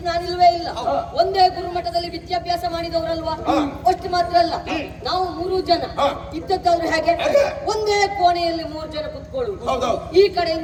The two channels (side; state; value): both; identical; correlation 1.00